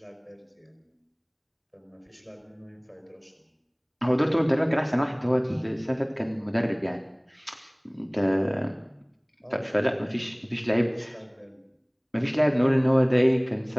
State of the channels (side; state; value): both; identical; correlation 1.00